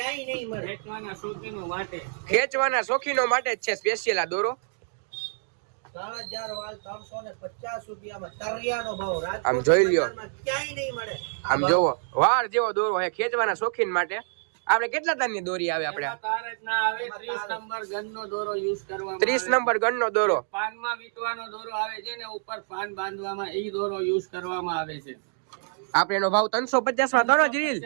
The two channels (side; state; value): left; silent; digital silence